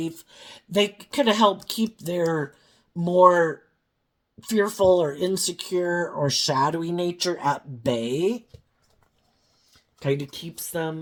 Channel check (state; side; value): identical; both; correlation 1.00